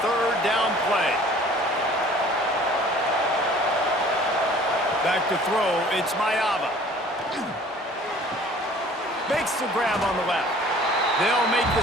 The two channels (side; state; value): both; normal; correlation 0.50